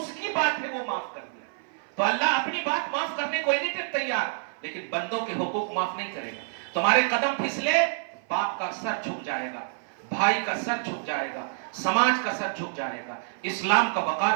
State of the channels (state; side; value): silent; left; 55 dB below the other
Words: کی بات ہے وہ معاف کر دیا. تو اللہ اپنی بات معاف کرنے کو نہیں تیار، لیکن بندوں کے حقوق معاف نہیں کرے گا. تمہارے قدم پھسلے، باپ کا سر جھک جائے گا، بھائی کا سر جھک جائے گا، سماج کا سر جھک جائے گا، اسلام کا وقار